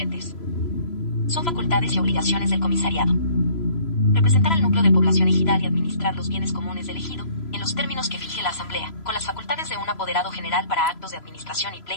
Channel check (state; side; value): late; right; 3.0 ms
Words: Son facultades y obligaciones del comisariado: representar al núcleo de población ejidal y administrar los bienes comunes del ejido, en los términos que fije la asamblea, con las facultades de un apoderado general para actos de administración y